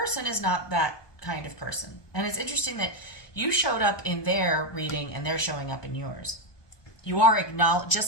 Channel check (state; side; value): late; right; 1.2 ms